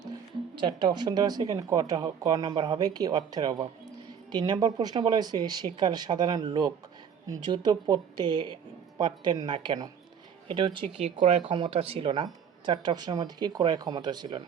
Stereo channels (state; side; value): quieter; left; 7.6 dB